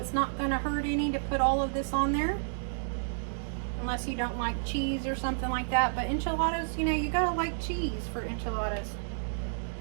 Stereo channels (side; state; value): left; silent; digital silence